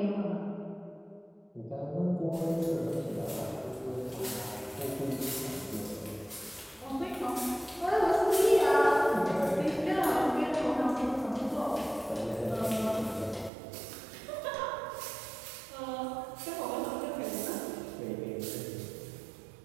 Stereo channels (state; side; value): drops out; left; at 13.5 s